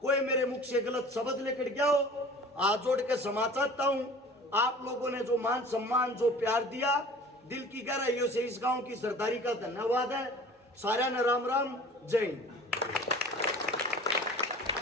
कोई मेरे मुख से गलत शब्द लेकर गया हो, हाथ जोड़ के क्षमा चाहता हूं। आप लोगों ने जो मान सम्मान, जो प्यार दिया, दिल की गहराइयों से इस गांव की सरदारी का धन्यवाद है। सारा ने राम राम, जय हिंद।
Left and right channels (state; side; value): normal; both; correlation 0.44